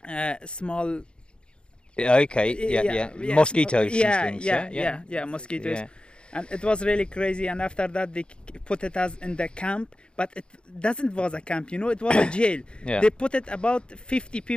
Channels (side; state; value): right; late; 0.054 ms